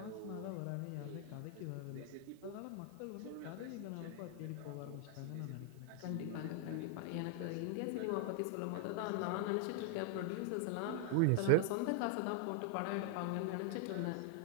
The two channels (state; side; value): different; both; correlation 0.00